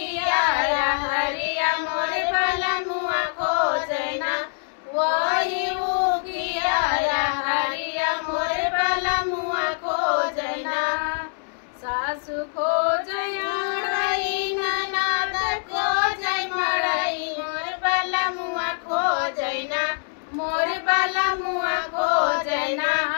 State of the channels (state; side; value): silent; right; 62 dB below the other